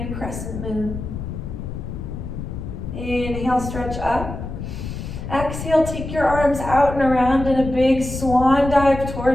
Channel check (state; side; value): noise; left; rumble, 7 dB below the sound